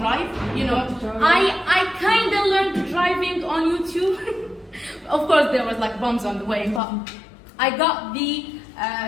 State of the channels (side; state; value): right; drops out; at 6.8 s